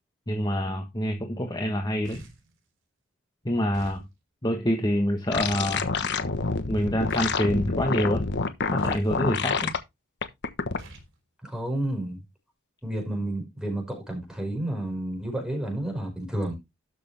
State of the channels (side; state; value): both; normal; correlation 0.63